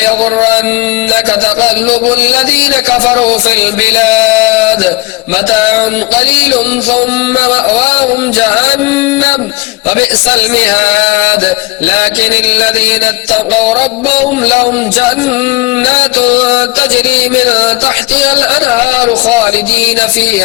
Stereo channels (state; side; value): quieter; right; 22.0 dB